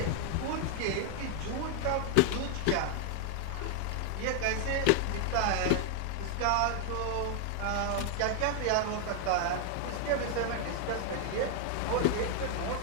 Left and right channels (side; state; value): both; different; correlation 0.00